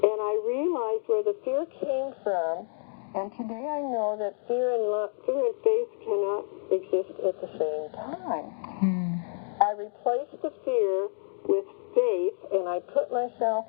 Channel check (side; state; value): right; silent; 59 dB below the other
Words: And I realized where the fear came from, and today I know that fear and faith cannot exist at the same time. I replaced the fear with faith, and I put